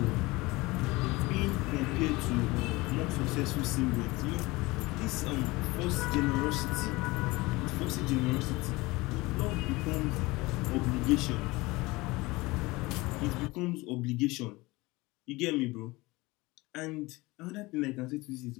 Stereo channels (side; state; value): right; quieter; 22.0 dB